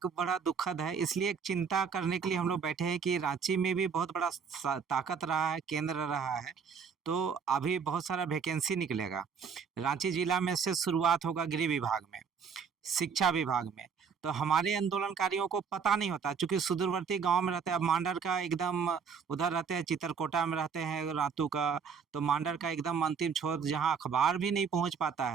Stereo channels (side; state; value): left; quieter; 6.3 dB